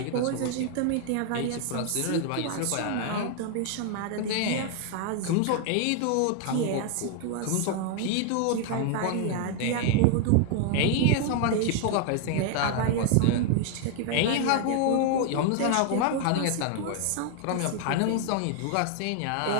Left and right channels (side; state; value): both; different; correlation 0.00